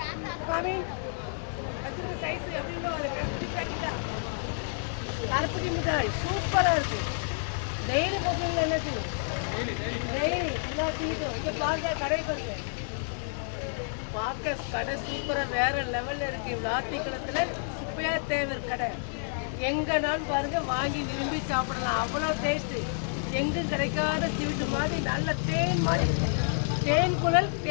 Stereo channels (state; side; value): silent; right; digital silence